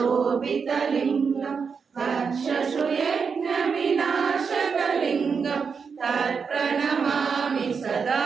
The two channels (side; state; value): left; quieter; 5.8 dB